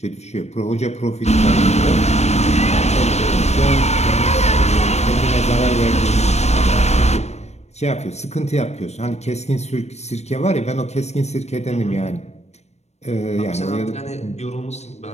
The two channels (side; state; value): right; late; 0.32 ms